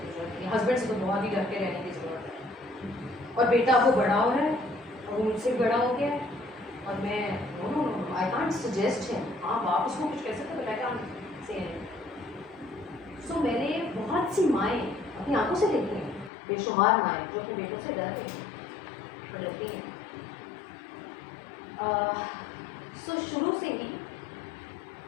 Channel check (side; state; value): right; drops out; at 16.3 s